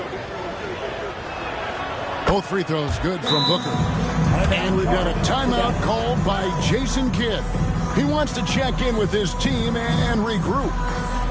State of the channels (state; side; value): identical; both; correlation 1.00